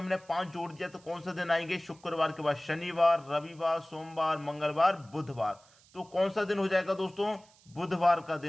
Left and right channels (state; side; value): noise; right; hiss, 28 dB below the sound